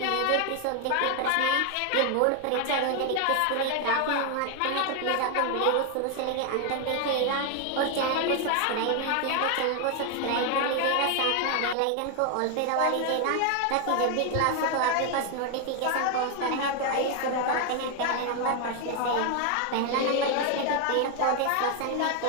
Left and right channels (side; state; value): both; different; correlation 0.01